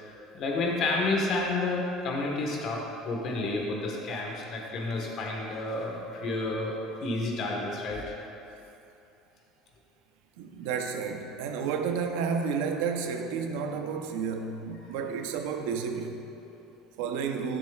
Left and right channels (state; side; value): normal; both; correlation 0.37